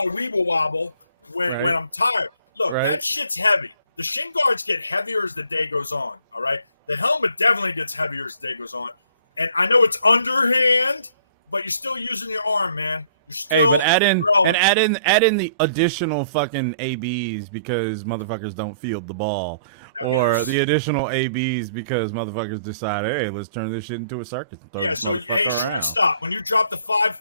a weeble wobble when I'm tired. Look, that shit's heavy. The shin guards get heavier as the day goes on, all right? The helmet definitely gets heavier as the day goes on. And I know it's underhand, but you're still using your arm, man. You're still but add in throwing. and add in the additional fucking ABs because motherfuckers don't field the ball, or the additional ABs because motherfuckers decide, hey, let's turn this shit into a circus. Yeah. So hey, shortstop, when you drop the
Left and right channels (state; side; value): inverted; both; correlation -0.60